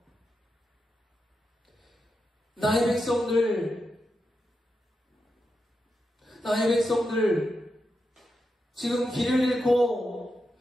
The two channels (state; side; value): normal; both; correlation 0.87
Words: 나의 백성들 지금 길을 잃고